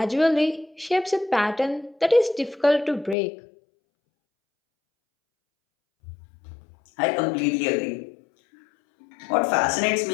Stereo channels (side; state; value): right; drops out; at 3.2 s